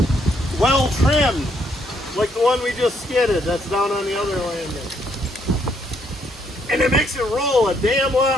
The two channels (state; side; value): normal; both; correlation 0.71